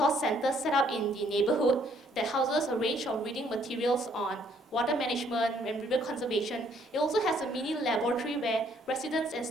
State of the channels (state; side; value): normal; both; correlation 0.66